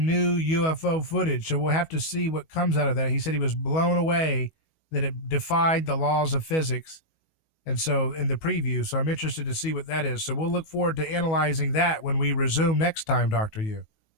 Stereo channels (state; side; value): late; right; 19 ms